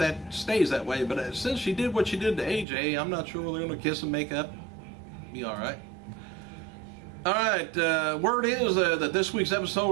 stays that way. But since she did what she did to AJ, I'm not sure whether they're going to kiss and make up. Be alright. Alright, word is that this week's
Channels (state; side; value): drops out; left; at 2.7 s